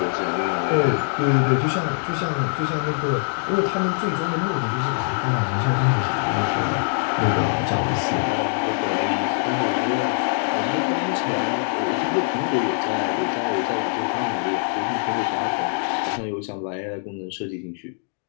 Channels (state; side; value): silent; right; digital silence